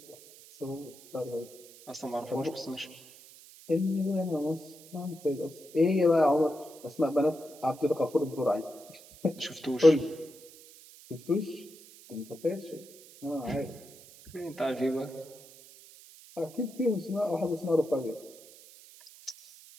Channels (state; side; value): noise; right; hiss, 21 dB below the sound